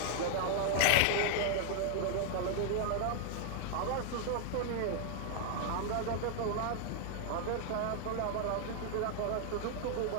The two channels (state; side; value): different; both; correlation 0.00